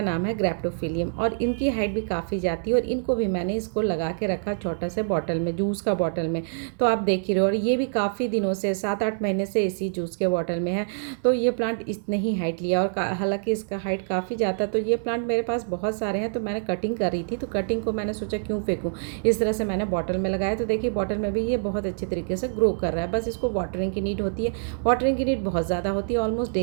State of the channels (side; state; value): left; silent; 61 dB below the other